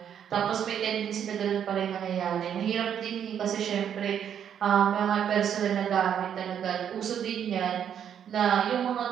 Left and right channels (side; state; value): left; quieter; 8.9 dB